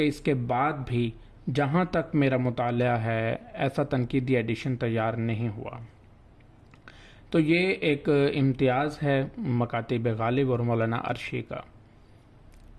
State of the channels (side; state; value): both; identical; correlation 1.00